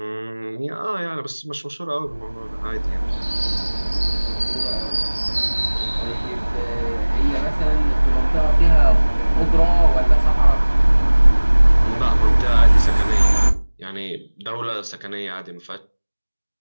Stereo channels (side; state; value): both; inverted; correlation -1.00